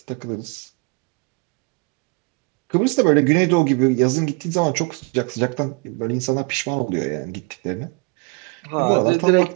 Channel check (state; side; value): quieter; left; 30.9 dB